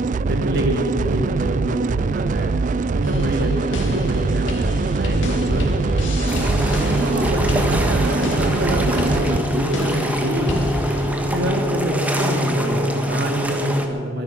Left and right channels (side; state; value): both; normal; correlation 0.66